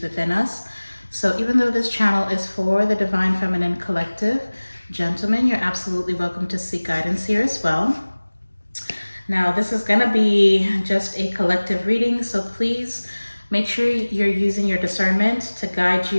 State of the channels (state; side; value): inverted; both; correlation -1.00